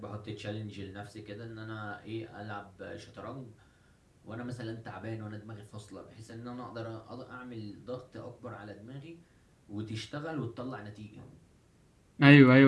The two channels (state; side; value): identical; both; correlation 1.00